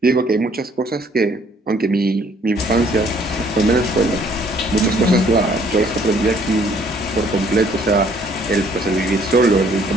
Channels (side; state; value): both; normal; correlation 0.62